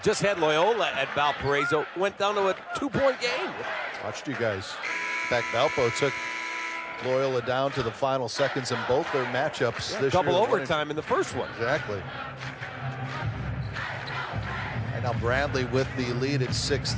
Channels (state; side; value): identical; both; correlation 1.00